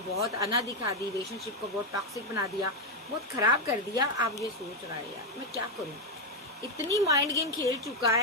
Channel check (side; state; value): both; normal; correlation 0.04